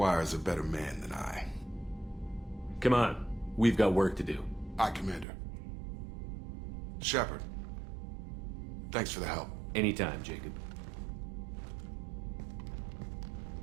a better man than I. Come on. We've got work to do. Aye, Commander. Shepard. Thanks for the help. Anytime, Jacob.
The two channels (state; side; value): drops out; left; at 5.2 s